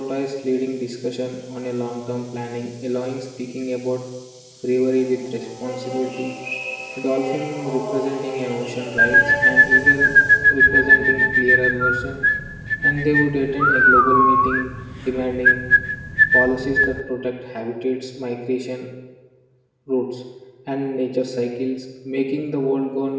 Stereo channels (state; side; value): identical; both; correlation 1.00